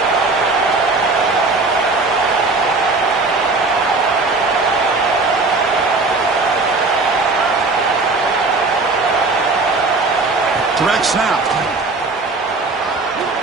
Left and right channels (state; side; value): quieter; left; 3.6 dB